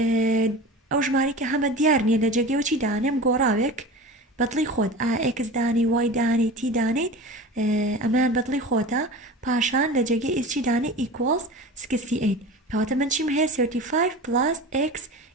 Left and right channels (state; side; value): normal; both; correlation 0.33